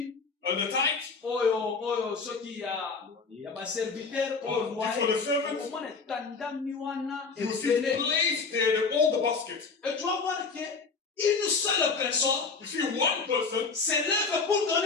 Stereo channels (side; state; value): right; quieter; 4.6 dB